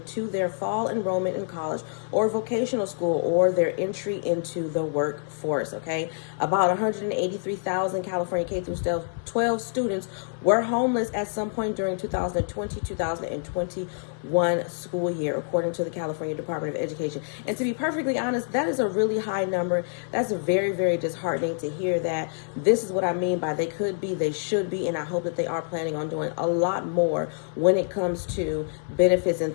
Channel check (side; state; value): right; silent; 61 dB below the other